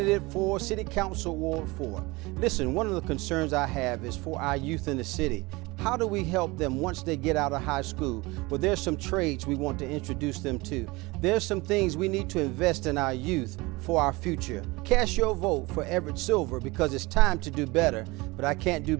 for City Council Ward 4. Listen, one of the concerns I have is for our youth in the city. How do we help them once they get out of high school? Well, there's some trades we want to introduce them to. There's some things we need to invest in our youth for our future. Cast your vote for Everett Silver because it's time to do better, but I can't do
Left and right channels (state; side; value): quieter; left; 23.3 dB